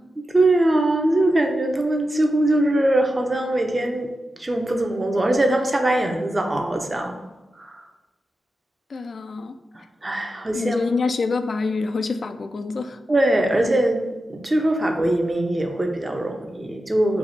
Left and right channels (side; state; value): both; normal; correlation 0.90